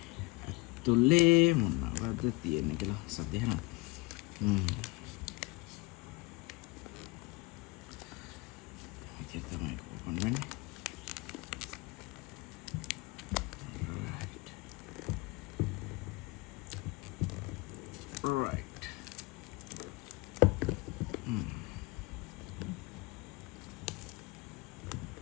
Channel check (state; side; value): quieter; right; 25.1 dB